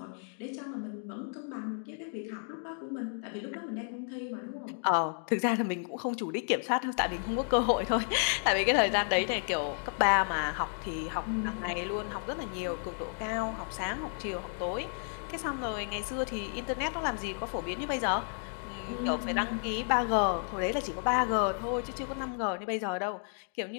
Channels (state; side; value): silent; right; 56 dB below the other